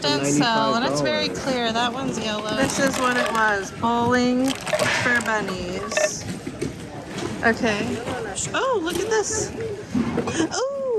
didn't sell, and it's very clear. That one's yellow. This is what it was. Bowling for bunnies. Okay. Oh, look at this.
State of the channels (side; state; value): both; identical; correlation 1.00